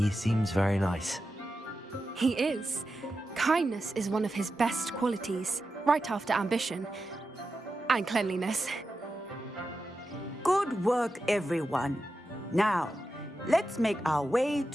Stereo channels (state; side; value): normal; both; correlation 0.90